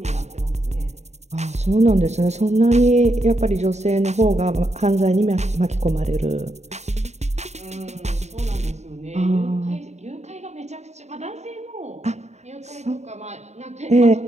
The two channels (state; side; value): late; left; 0.32 ms